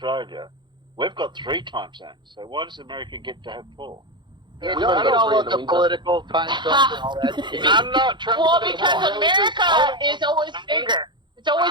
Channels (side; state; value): left; late; 0.22 ms